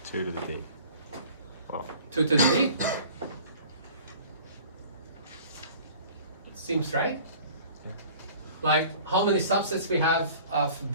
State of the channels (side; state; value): both; inverted; correlation -0.47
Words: 2 to the D. Well, 2 to the D? Seems right. Like how many subsets we have of